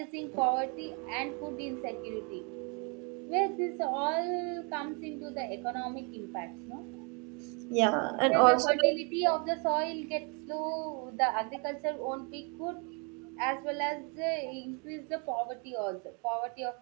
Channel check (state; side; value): quieter; left; 34.1 dB